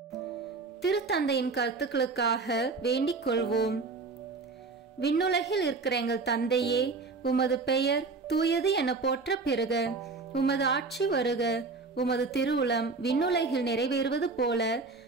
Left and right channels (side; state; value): left; quieter; 4.1 dB